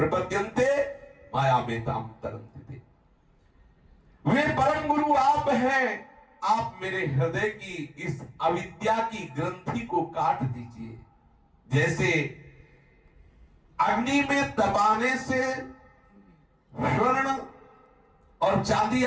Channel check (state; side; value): identical; both; correlation 1.00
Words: माया में ताम तरन्ते। वे परम गुरु आप हैं, आप मेरे हृदय की इस अविद्या की ग्रंथि को काट दीजिए। जैसे अग्नि में दबाने से स्वर्ण और चांदी